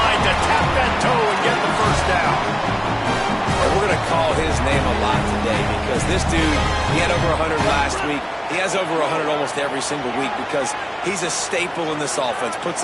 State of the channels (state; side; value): identical; both; correlation 1.00